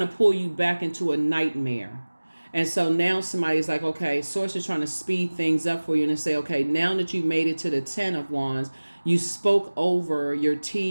to pull you back into a nightmare. And so now somebody's like, okay, Source is trying to speed things up for you and say, okay, now that you made it to the 10 of Wands, you spoke over your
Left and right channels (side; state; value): both; inverted; correlation -1.00